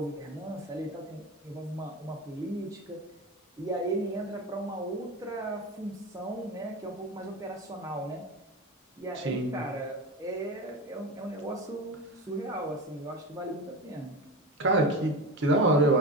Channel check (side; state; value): both; normal; correlation 0.26